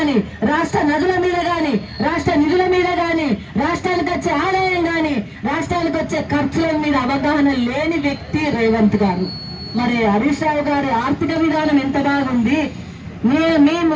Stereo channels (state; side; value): identical; both; correlation 1.00